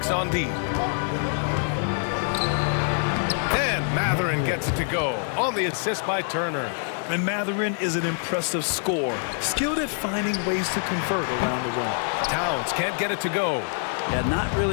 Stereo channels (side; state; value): right; silent; 62 dB below the other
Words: on D. And Mathurin gets it to go on the assist by Turner. And Mathurin is an impressive scorer, skilled at finding ways to convert around the rim. Towns can't get it to go. Yeah, not